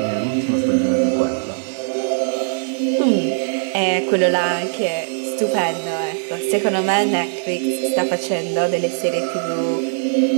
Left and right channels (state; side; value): silent; left; 66 dB below the other